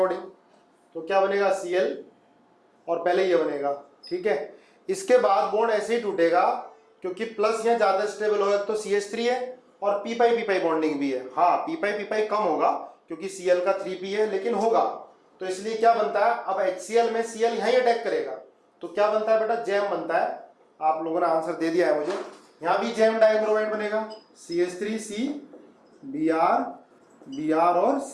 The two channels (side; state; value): both; identical; correlation 1.00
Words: तो क्या बनेगा? Cl और पहले ये बनेगा, ठीक है। इसके बाद बॉन्ड ऐसे ही टूटेगा क्योंकि प्लस यहाँ ज्यादा स्टेबल होगा, तो CH3 है और पी पाई बॉन्डिंग भी है। हाँ पी पाई कम होगा क्योंकि Cl का 3p है, लेकिन होगा। तो इसलिए क्या बनता है, अब HCl में Cl यहीं अटैक करेगा तो क्या बनता है बेटा? जैम बनता है। आप लोगों ने आंसर दे दिया है मुझे। यहां भी जैम डाइब्रोमाइड बनेगा, CH3C Br और